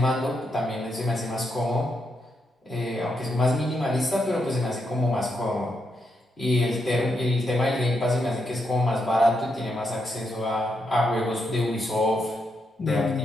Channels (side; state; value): both; normal; correlation 0.81